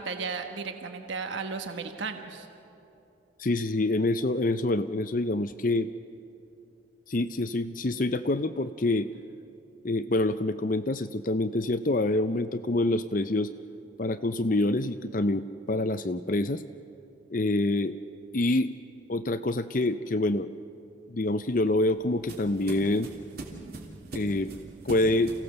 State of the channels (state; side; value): normal; both; correlation 0.50